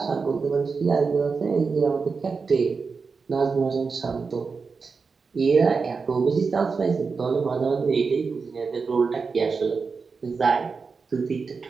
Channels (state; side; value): quieter; left; 4.9 dB